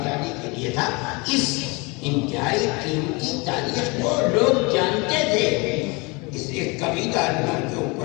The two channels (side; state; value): right; quieter; 27.5 dB